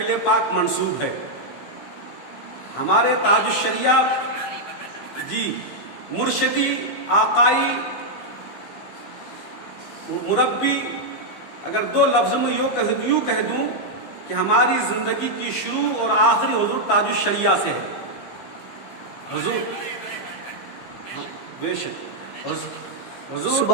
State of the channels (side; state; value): right; late; 15 ms